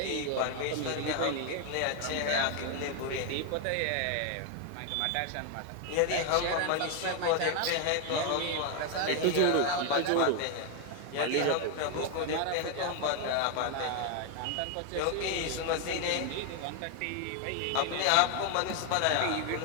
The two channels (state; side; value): different; both; correlation 0.01